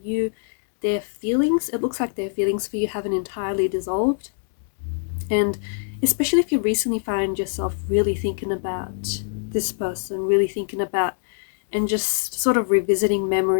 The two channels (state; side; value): silent; right; digital silence